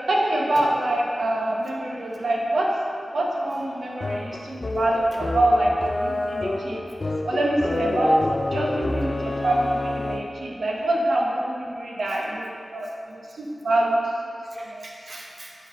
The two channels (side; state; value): both; normal; correlation 0.94